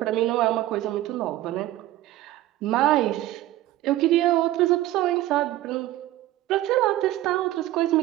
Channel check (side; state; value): left; quieter; 15.3 dB